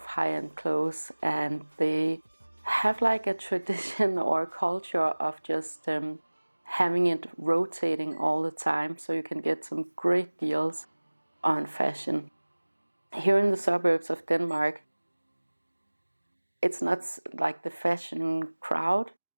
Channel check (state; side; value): inverted; both; correlation -1.00